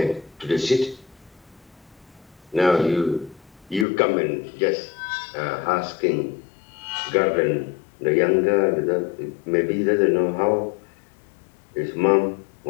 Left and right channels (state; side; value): drops out; right; at 3.9 s